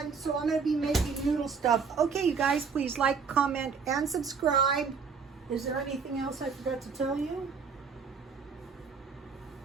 so I'm going to be making noodle stuff. Okay, you guys, please like, comment, and subscribe. Is there anything else I forgot to tell you?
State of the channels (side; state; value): left; quieter; 5.6 dB